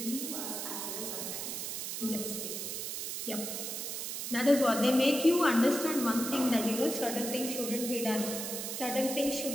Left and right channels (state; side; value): noise; right; hiss, 4 dB below the sound